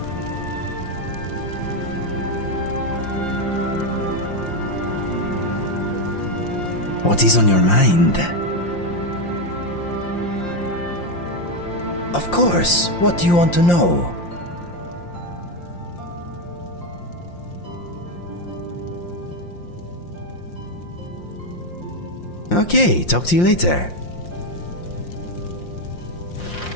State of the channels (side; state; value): right; late; 5.7 ms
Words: What is on your mind? Of course, what do you want to know? Okay, talk to you later.